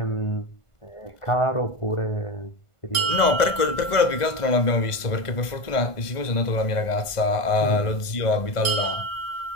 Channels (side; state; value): right; late; 1.5 ms